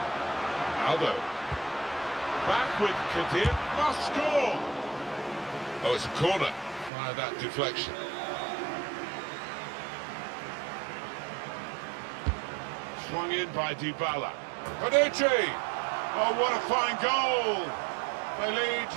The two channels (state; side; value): drops out; left; at 6.9 s